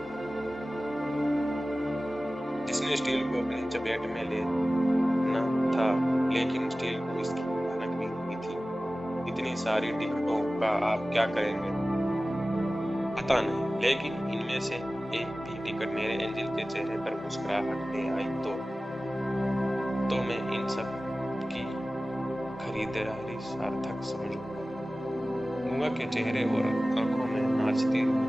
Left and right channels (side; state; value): both; normal; correlation 0.96